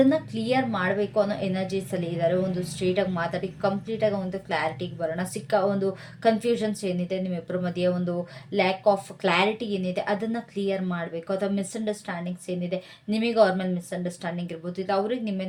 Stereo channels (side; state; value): both; identical; correlation 1.00